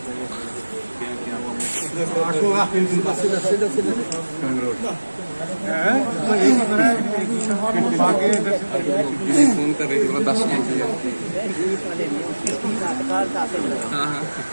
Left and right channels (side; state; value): both; inverted; correlation -1.00